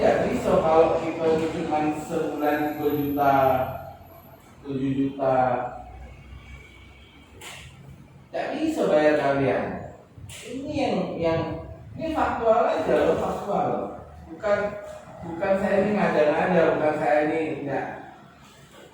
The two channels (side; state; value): both; identical; correlation 1.00